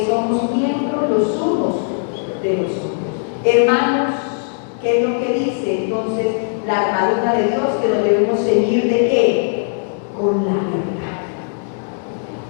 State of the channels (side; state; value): right; silent; 67 dB below the other